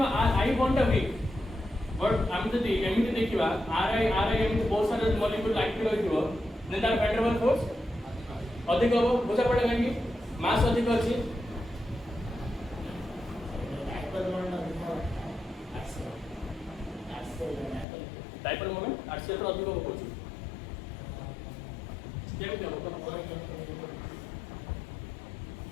are I bond weak but हम जदि एमिति देखिबा आर आई एमिति बहुत सारे मॉलिक्यूल एक्टिव होइथिबो ने तार वैन डर वाल्स फोर्स अधिक हो बुझा पड़ेगा कि मास अधिक अछि डाइपोल मोमेंट आरसीएल तो अधिक हो कोची केमि हो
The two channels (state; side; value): drops out; right; at 17.9 s